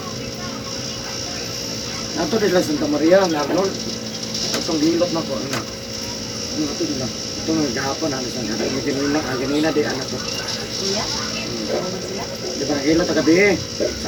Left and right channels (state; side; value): identical; both; correlation 1.00